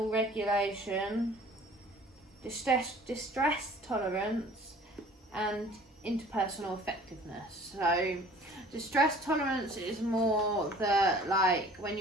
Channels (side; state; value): both; normal; correlation 0.49